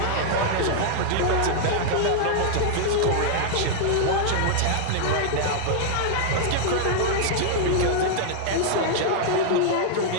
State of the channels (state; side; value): different; both; correlation -0.01